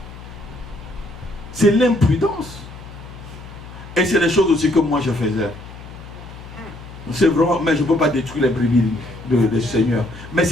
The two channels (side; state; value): left; noise; hum, 15 dB below the sound